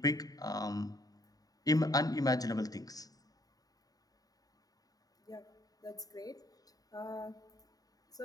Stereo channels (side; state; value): right; late; 0.18 ms